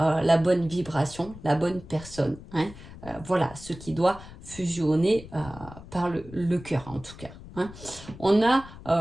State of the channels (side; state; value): left; noise; rumble, 16 dB below the sound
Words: bonne vibration, la bonne personne. Hein. Voilà, ce qui doit fusionner par le cœur en tout cas. Hein. On a...